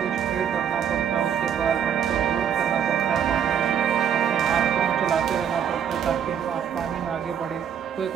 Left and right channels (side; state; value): left; quieter; 8.5 dB